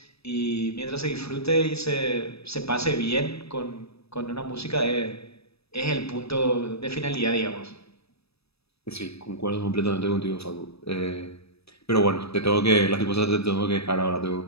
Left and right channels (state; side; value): late; right; 0.78 ms